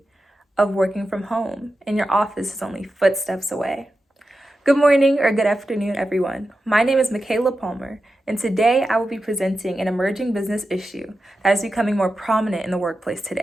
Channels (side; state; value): both; normal; correlation 0.91